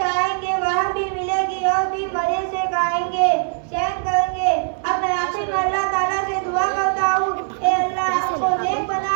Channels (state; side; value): silent; left; digital silence